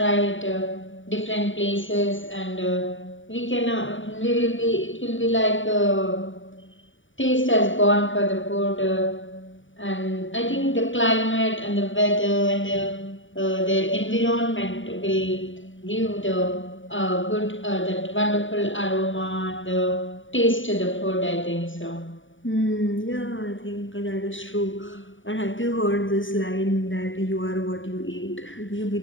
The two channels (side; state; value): right; late; 0.56 ms